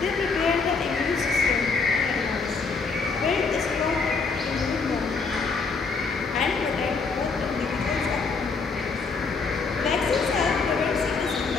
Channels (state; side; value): quieter; right; 4.6 dB